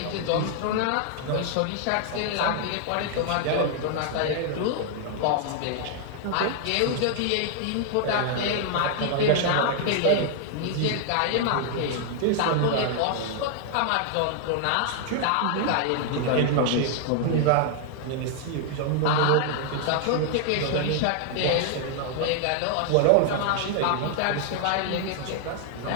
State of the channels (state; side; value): different; both; correlation 0.00